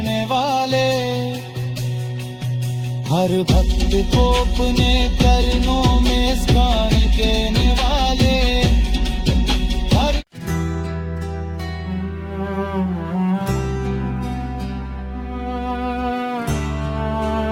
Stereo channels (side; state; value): both; identical; correlation 1.00